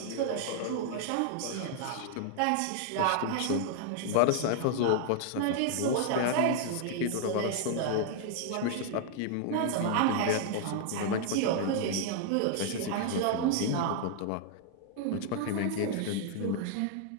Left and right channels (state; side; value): different; both; correlation 0.00